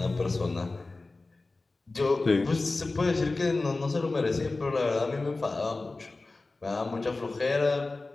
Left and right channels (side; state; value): right; quieter; 3.4 dB